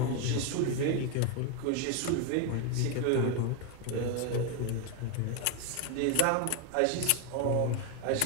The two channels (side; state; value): both; different; correlation 0.01